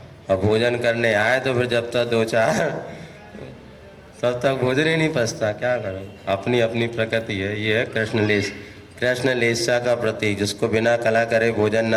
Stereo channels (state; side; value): identical; both; correlation 1.00